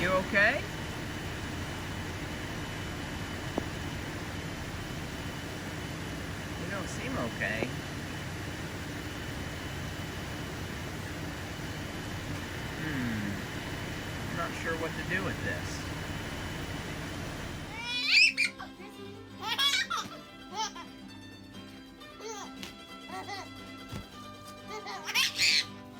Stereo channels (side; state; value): both; identical; correlation 1.00